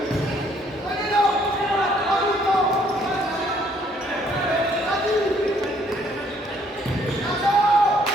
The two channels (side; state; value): both; normal; correlation 0.65